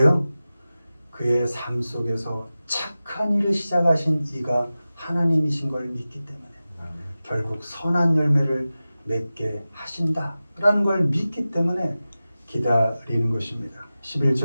그의 삶 속에서 착한 일을 시작하신 이가 하나님이신 걸 믿기 때문에 결국 선한 열매를 맺게 하신다라는 걸 믿기 때문에 기다리는 것입니다.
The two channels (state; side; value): inverted; both; correlation -0.95